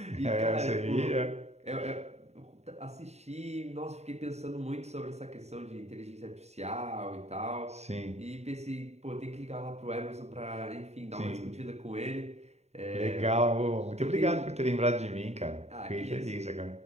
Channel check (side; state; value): left; late; 0.32 ms